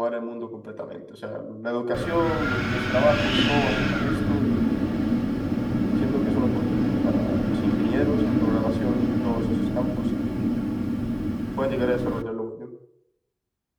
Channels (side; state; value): both; identical; correlation 1.00